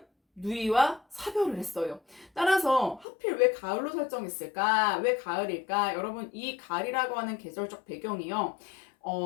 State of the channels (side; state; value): right; drops out; at 3.1 s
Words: 누이와 사별을 했어요. 따라서 하필 왜 가을로 설정했을까? 왜 가을일까? 여러분 이 가을이라고 하는 계절적 배경이요.